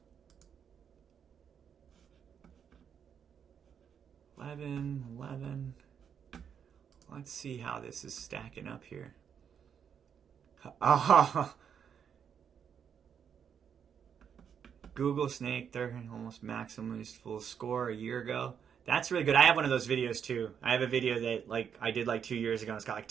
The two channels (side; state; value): left; quieter; 7.7 dB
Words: Eleven. Let's see how this is stacking up here. Google Snake, they're almost maximum full score a year ago. That's really good. I have one of those videos too. I have a video that I did 2 years ago. It's got